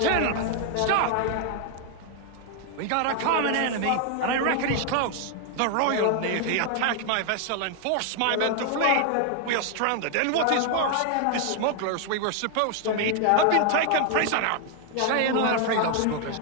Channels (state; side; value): different; both; correlation 0.00